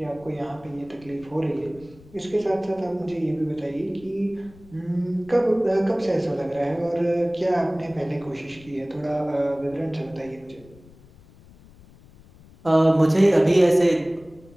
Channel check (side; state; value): left; noise; rumble, 24 dB below the sound